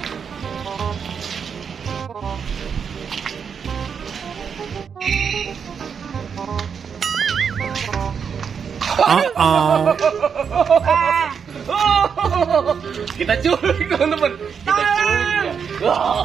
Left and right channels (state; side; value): quieter; left; 6.7 dB